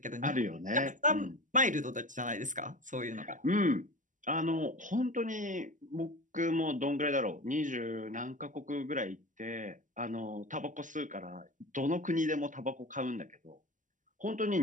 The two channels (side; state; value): left; late; 0.37 ms